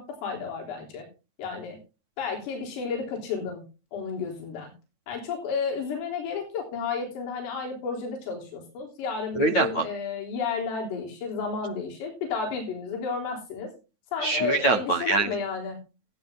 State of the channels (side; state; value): right; late; 9.1 ms